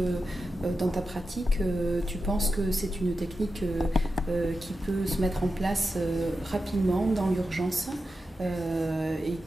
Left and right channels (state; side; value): normal; both; correlation 0.90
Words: dans ta pratique, tu penses que c'est une technique qui peut se mettre en place rapidement dans l'urgence et